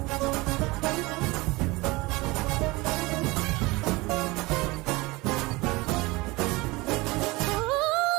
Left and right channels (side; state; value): left; quieter; 22.8 dB